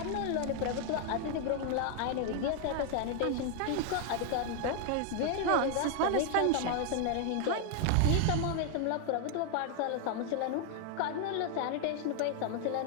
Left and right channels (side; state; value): both; different; correlation 0.00